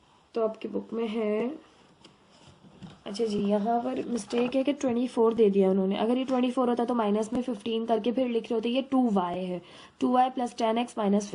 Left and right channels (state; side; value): identical; both; correlation 1.00